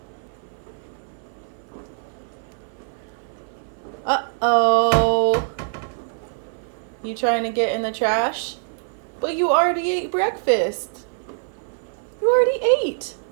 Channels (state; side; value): silent; left; 57 dB below the other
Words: Uh-oh. You trying to get in the trash? But you already ate breakfast. You already ate.